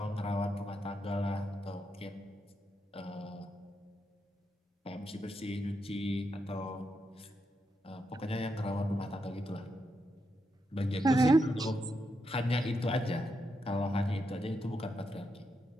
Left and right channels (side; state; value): both; normal; correlation 0.83